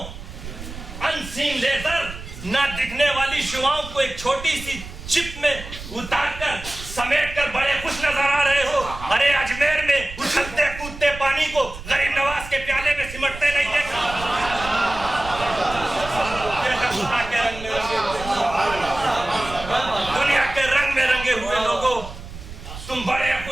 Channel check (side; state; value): right; noise; rumble, 12 dB below the sound